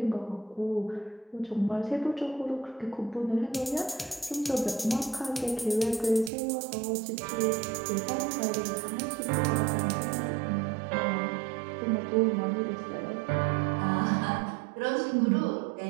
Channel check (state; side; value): drops out; left; at 6.3 s